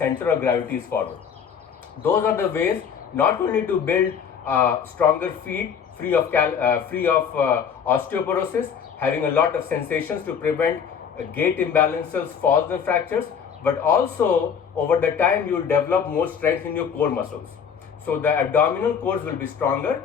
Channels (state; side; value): quieter; right; 7.2 dB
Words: of gravity is forward. Those are the ways not only to build stronger feet free of osteoporosis, having a lot of sensations to prevent gait imbalances, falls and fractures, but also over the time you will develop more strength in your core muscles. So the abdominal cores will be stronger,